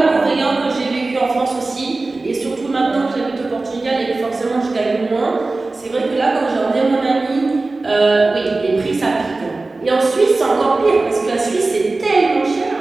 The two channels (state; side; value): quieter; left; 3.4 dB